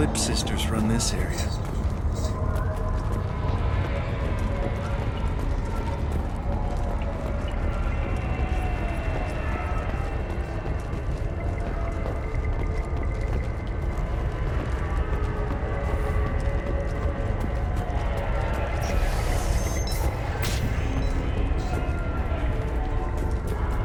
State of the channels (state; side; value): identical; both; correlation 1.00